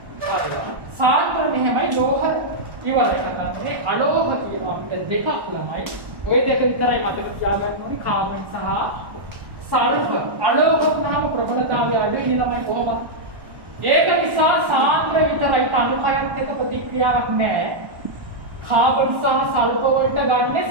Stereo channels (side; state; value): left; late; 1.1 ms